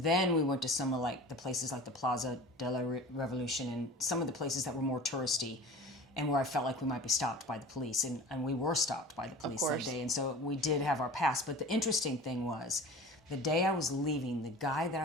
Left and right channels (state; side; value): normal; both; correlation 0.39